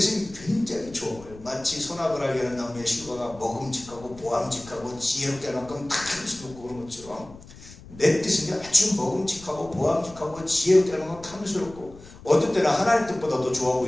굉장히 좋아요. 마치 소나그라게 하는 나무의 실과가 먹음직하고 보암직하고 지혜롭게 할 만큼 다 힘쓰고 그런 것처럼 내 뜻은 아주 먹음직하고 보암직하고 지혜롭고 탐스럽고 어떤 때는 하나님 뜻보다 더 좋아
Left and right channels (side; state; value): left; noise; rumble, 19 dB below the sound